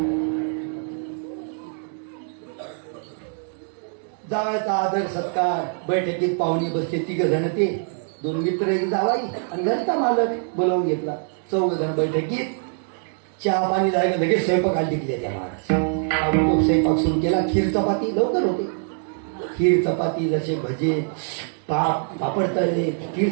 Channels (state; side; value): silent; left; 56 dB below the other